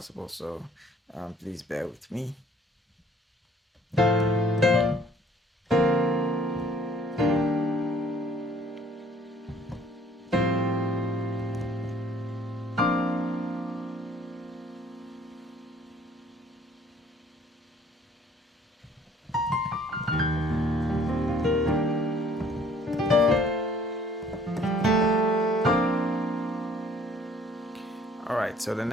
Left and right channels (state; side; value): normal; both; correlation 0.58